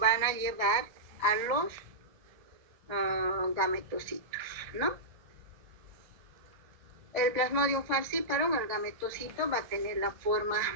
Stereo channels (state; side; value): late; left; 1.9 ms